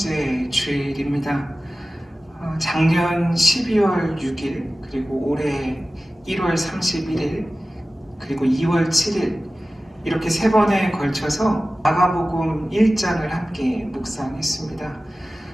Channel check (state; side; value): normal; both; correlation 0.96